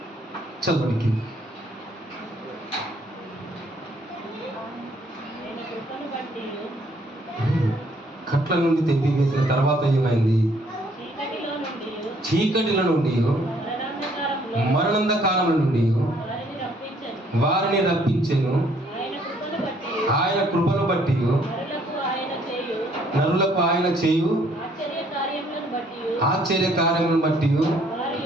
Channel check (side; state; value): both; normal; correlation 0.64